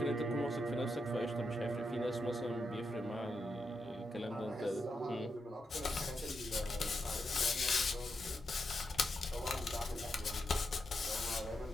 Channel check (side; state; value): both; normal; correlation 0.84